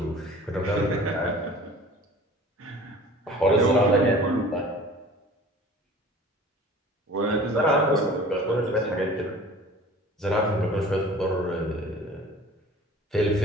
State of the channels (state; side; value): normal; both; correlation 0.44